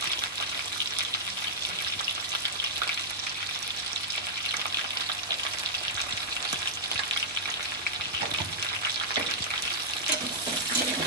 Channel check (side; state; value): both; normal; correlation -0.09